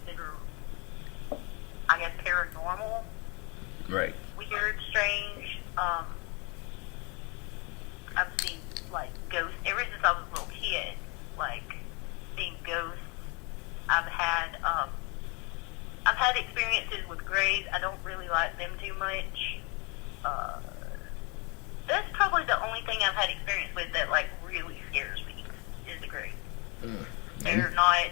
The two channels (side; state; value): right; quieter; 30.6 dB